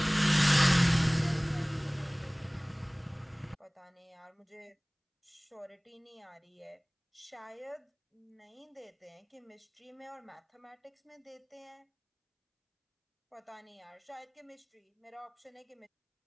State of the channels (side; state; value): both; identical; correlation 1.00